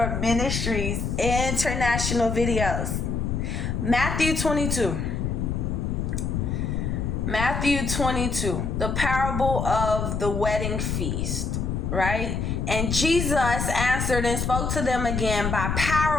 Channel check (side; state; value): left; noise; rumble, 1 dB below the sound